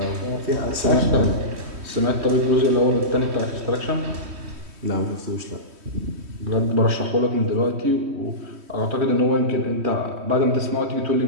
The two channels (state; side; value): late; left; 3.1 ms